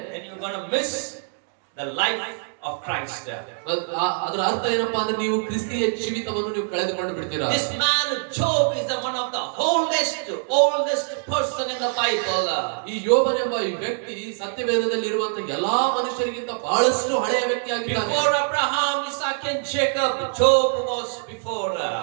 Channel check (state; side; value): silent; left; 62 dB below the other